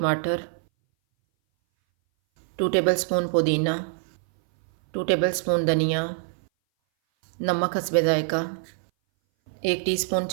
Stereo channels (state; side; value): silent; left; 60 dB below the other